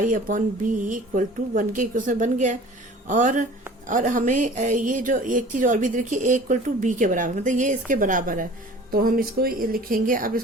upon b equal to 1 के इक्वल बन गया। और हमें ये जो एक चीज और भी देखिए, a इक्वल टू बी के बराबर, मतलब ये इसके बराबर है। तो हम इसको लिखेंगे, अब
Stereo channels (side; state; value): both; normal; correlation 0.45